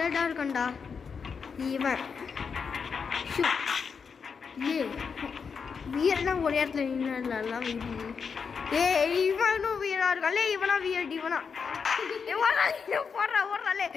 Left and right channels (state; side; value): quieter; right; 5.9 dB